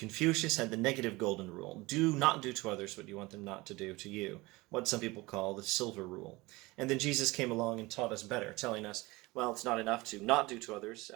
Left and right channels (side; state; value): left; quieter; 22.1 dB